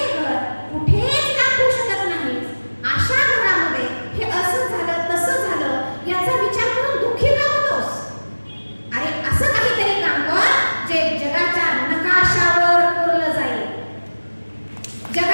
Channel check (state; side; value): inverted; both; correlation -1.00